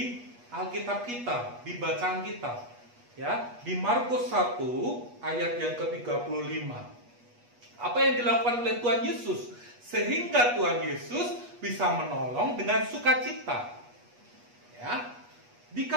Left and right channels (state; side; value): late; left; 8.3 ms